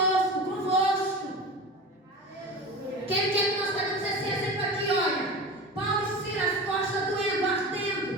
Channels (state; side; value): normal; both; correlation 0.31